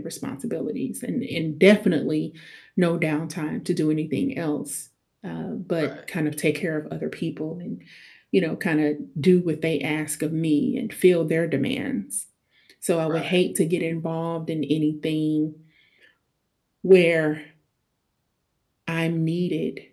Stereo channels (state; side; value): identical; both; correlation 1.00